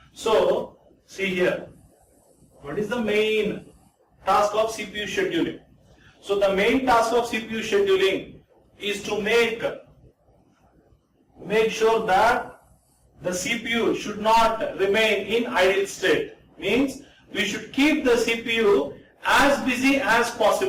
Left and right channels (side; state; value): both; identical; correlation 1.00